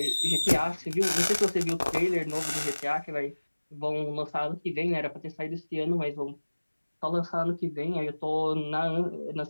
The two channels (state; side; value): inverted; both; correlation -1.00